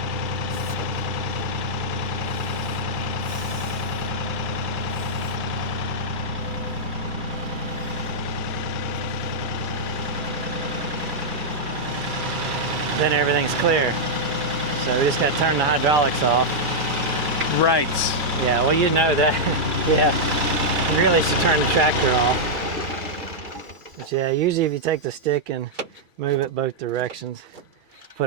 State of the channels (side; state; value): left; late; 2.3 ms